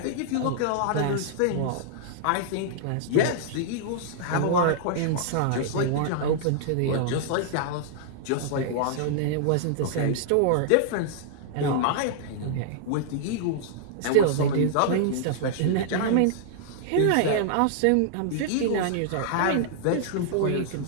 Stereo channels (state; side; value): different; both; correlation -0.01